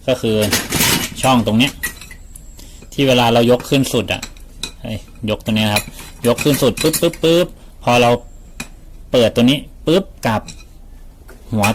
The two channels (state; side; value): identical; both; correlation 1.00